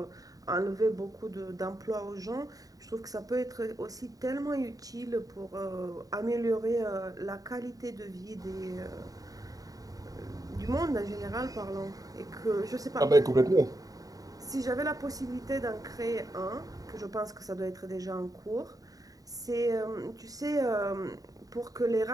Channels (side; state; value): left; late; 0.18 ms